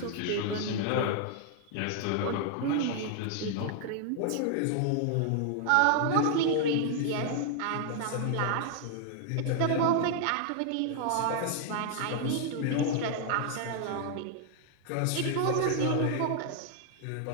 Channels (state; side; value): different; both; correlation 0.00